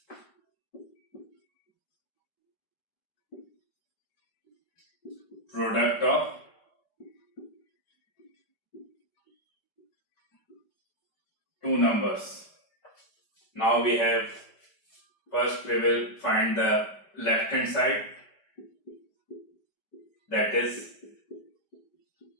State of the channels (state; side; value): late; right; 5.0 ms